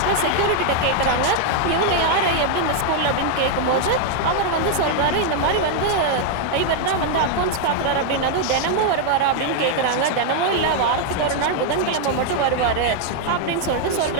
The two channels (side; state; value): both; different; correlation 0.00